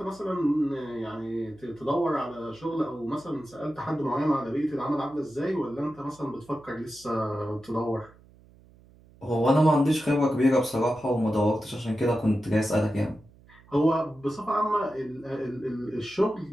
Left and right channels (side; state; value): right; noise; hum, 26 dB below the sound